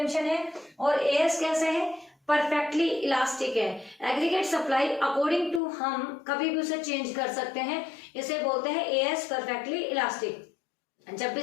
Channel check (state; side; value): drops out; right; at 5.6 s